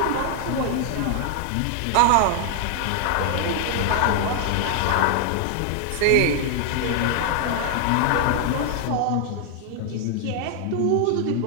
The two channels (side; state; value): both; different; correlation 0.00